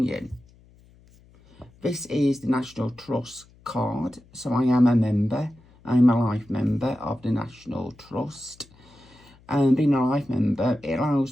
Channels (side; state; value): left; noise; hum, 28 dB below the sound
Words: This is the National Trust card, so I am a member. I'm a life member of the National Trust, and being a life member, it